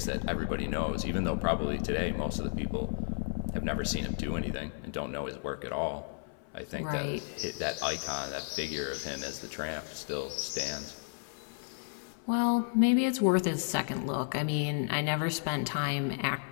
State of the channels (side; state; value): right; silent; 56 dB below the other